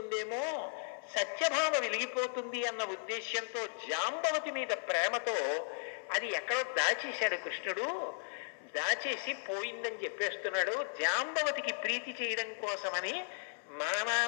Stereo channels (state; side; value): silent; right; 54 dB below the other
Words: సత్యభామ వెలిగిపోతుంది అన్న ఉద్దేశ్యంతో జాంబవతి మీద ప్రేమతో అది ఎక్కడో దాచేశాడు కృష్ణుడు. దాచేసి పోయిందని చెప్పేస్తున్నాడు. జాంబవతికి ప్రీతి చేయడం కోసమని మా